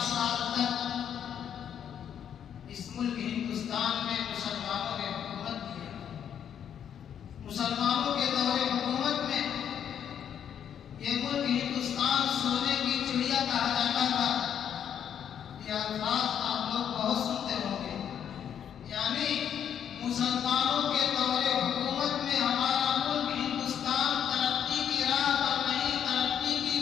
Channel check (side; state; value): right; quieter; 8.9 dB